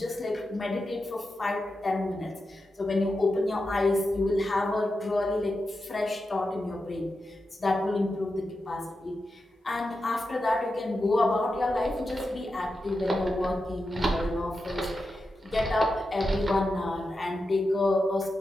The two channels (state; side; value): normal; both; correlation 0.89